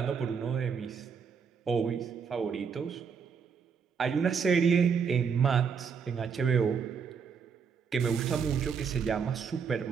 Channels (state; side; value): quieter; left; 6.3 dB